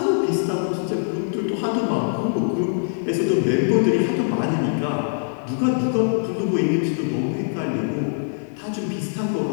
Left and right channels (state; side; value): silent; right; 59 dB below the other